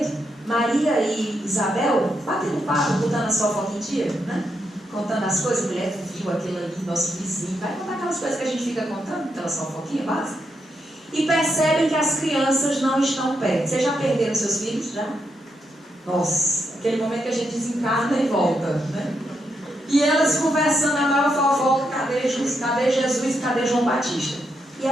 Maria e Isabel batendo papo, botando a fofoca em dia, né? Contando as coisas. Mulher, tu viu aquilo ali, nosso vizinho, vai contar aquelas coisas que a gente fica contando, aquelas fofoquinhas básicas. E percebem que as crianças não estão perto. Vocês já perderam seus filhos? Já? Nossa, aquele momento que a gente desencarna e volta, né? E elas conversando a maior fofoca: cadê Jesus, cadê João Batista? E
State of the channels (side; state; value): both; normal; correlation 0.81